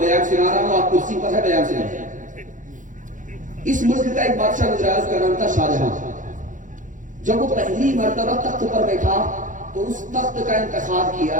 سنا رہا ہوں، آپ کرسی پر ہے، بیان سنا. اس ملک کا ایک بادشاہ گزرا، اس کا نام تھا شاہجہاں. جب وہ پہلی مرتبہ تخت پر بیٹھا تو اس تخت کا انتخاب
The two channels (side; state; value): left; late; 0.37 ms